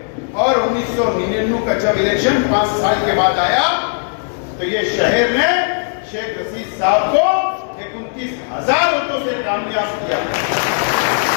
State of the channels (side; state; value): right; silent; 66 dB below the other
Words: और 1999 का जब इलेक्शन 5 साल के बाद आया तो ये शहर में शेख रशीद साहब को 29,000 वोटों से कामयाब किया।